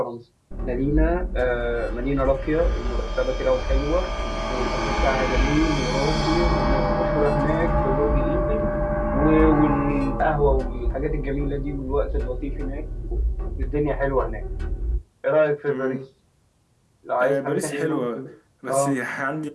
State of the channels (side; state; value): both; identical; correlation 1.00